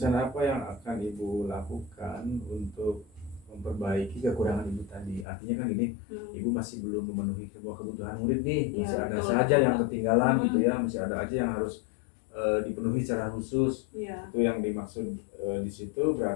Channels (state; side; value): drops out; right; at 5.2 s